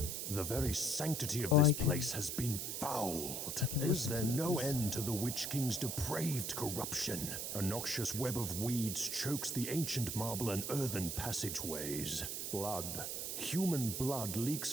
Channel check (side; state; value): right; noise; hiss, 3 dB below the sound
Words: the very sanctity of Oh, this I can- place has been fouled. I can Is listen there to no this. end to the Witch King's depraved corruption? A noxious web of weeds chokes the ancient marble and earthen passageways. Blood. Human blood leaks